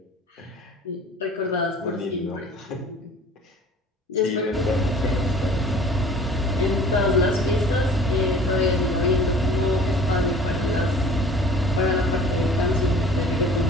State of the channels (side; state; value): both; normal; correlation 0.47